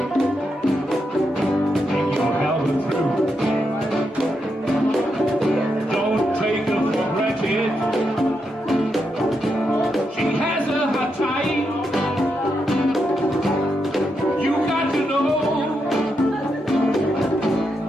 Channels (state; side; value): normal; both; correlation 0.83